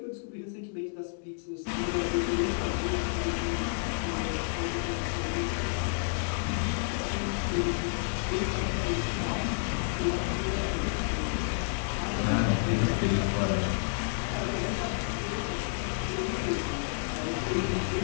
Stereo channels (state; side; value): silent; right; digital silence